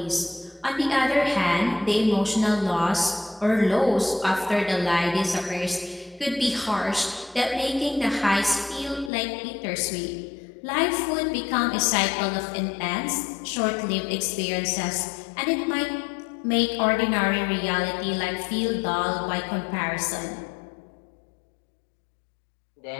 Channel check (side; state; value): right; drops out; at 9.1 s